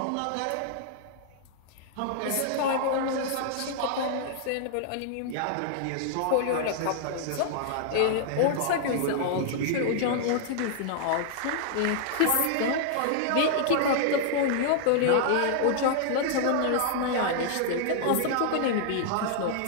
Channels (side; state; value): both; different; correlation -0.01